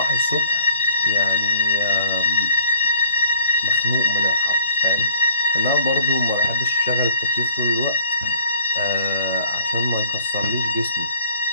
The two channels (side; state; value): both; inverted; correlation -0.55